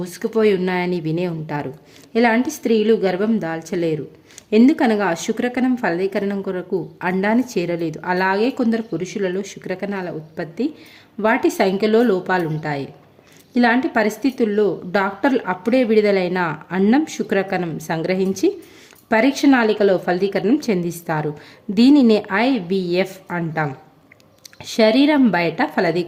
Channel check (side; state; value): both; identical; correlation 1.00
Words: ఉన్నాయని వినే ఉంటారు. ఇలాంటి స్త్రీలు గర్భం దాల్చలేరు. ఎందుకనగా శుక్రకణం ఫలదీకరణం కొరకు అండాన్ని చేరలేదు. అలాగే కొందరు పురుషులలో శుక్రకణాల ఉత్పత్తి, వాటి సంఖ్యలో లోపాలుంటాయి. ఇలాంటి పరిస్థితుల్లో డాక్టర్లు అప్పుడే విడుదలైన అండం శుక్రకణం సంగ్రహించి పరీక్ష నాళికలో ఫలదీకరణం చెందిస్తారు. దీనినే IVF అంటాం. శరీరం బయట